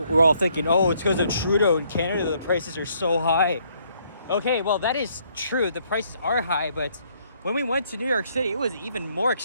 all thinking, oh, it's because of Trudeau in Canada, the prices are so high. Okay, well, that is true. The prices are high, but when we went to New York City, it was even more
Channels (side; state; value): both; inverted; correlation -0.68